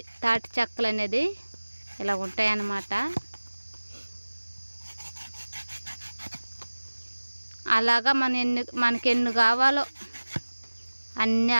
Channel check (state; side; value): inverted; both; correlation -1.00